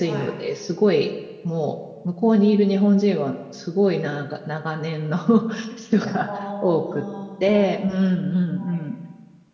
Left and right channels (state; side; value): identical; both; correlation 1.00